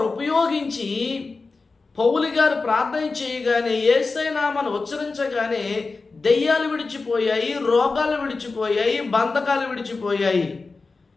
ఉపయోగించి పౌలు గారు ప్రార్థన చేయగానే యేసయ్య నామాన్ని ఉచ్చరించగానే దెయ్యాలు విడిచిపోయాయి, రోగాలు విడిచిపోయాయి, బంధకాలు విడిచిపోయాయి.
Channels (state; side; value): quieter; right; 4.0 dB